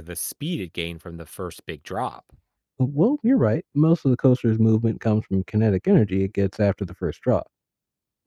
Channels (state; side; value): identical; both; correlation 1.00